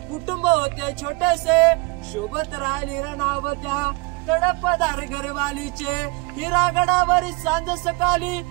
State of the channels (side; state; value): left; quieter; 27.1 dB